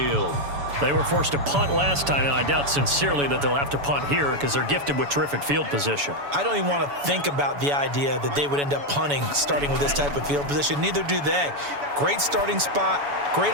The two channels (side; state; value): left; late; 7.0 ms